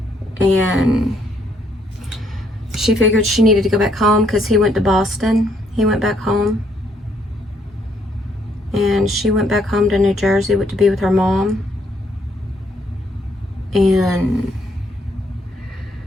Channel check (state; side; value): normal; both; correlation 0.70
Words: And she figured she needed to go back home because he went to Boston. He went back home. And she went back home to New Jersey to be with her mom. And